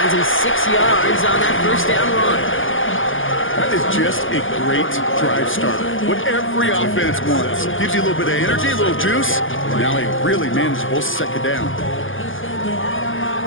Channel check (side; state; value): right; late; 0.58 ms